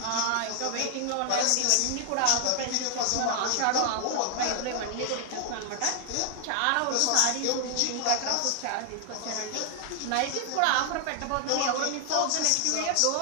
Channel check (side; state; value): both; different; correlation 0.00